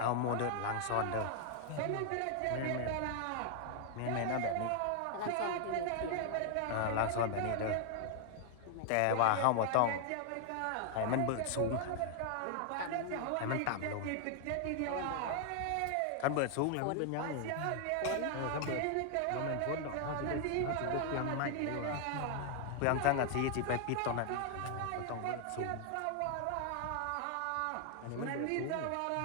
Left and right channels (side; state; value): both; different; correlation 0.00